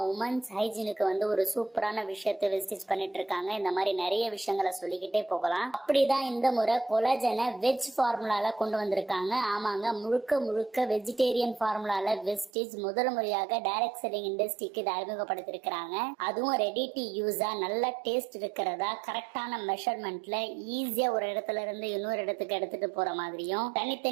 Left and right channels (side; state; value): left; drops out; at 12.5 s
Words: உமன்ஸ் ஹைஜீனுக்கு வந்து ஒரு சூப்பரான விஷயத்தை வெஸ்டீஜ் பண்ணிட்டு இருக்காங்க. இந்த மாதிரி நிறைய விஷயங்களை சொல்லிக்கிட்டே போகலாம். அப்படிதான் இந்த முறை கொலாஜனை வெஜ் ஃபார்முலால கொண்டு வந்திருக்காங்க. ஆமாங்க, முழுக்க வெஜிடேரியன் ஃபார்முலால வெஸ்டீஜ் முதல் முறையாக டைரக்ட் செல்லிங் இண்டஸ்ட்ரிக்கு இதை அறிமுகப்படுத்திருக்கிறாங்க. அதுவும் ரெடி டு யூஸா நல்ல டேஸ்ட் இருக்கிறதா, கரெக்டான மெஷர்மெண்ட்ல ஈஸியா ஒரு இடத்துல இருந்து இன்னொரு இடத்துக்கு எடுத்துட்டு போற மாதிரியும்